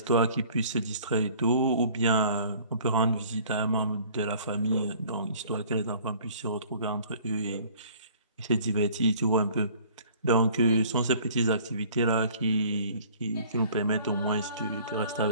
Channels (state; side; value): inverted; both; correlation -0.52